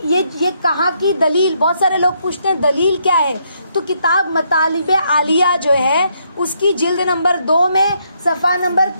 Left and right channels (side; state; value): both; inverted; correlation -0.74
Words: کہاں کی دلیل؟ بہت سارے لوگ پوچھتے ہیں دلیل کیا ہے، تو کتاب مطالب عالیہ جو ہے اس کی جلد نمبر 2 میں صفحہ نمبر